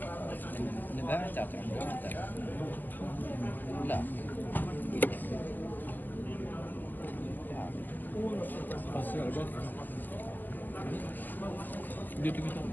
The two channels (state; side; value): late; right; 0.088 ms